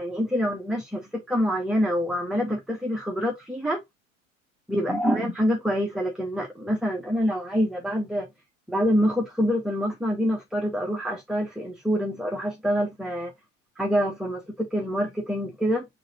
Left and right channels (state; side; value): normal; both; correlation 0.82